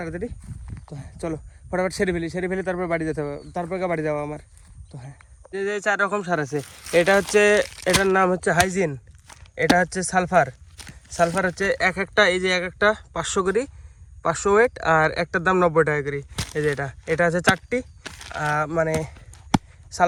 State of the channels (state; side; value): identical; both; correlation 1.00